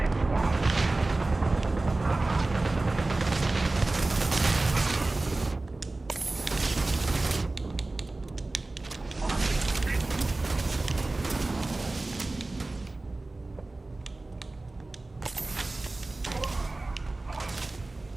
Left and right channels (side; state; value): left; quieter; 3.0 dB